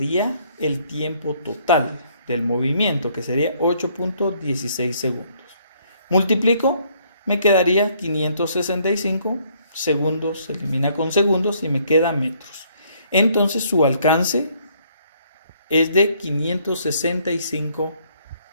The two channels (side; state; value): both; inverted; correlation -0.65